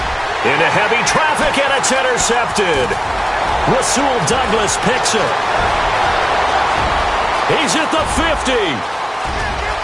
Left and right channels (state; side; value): identical; both; correlation 1.00